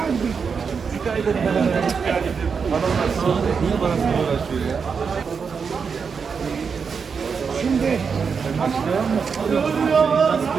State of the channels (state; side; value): quieter; left; 5.9 dB